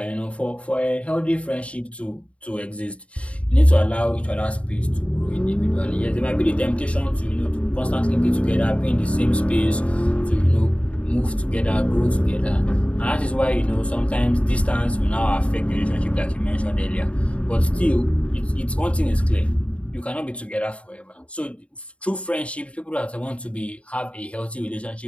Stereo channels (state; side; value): late; right; 0.063 ms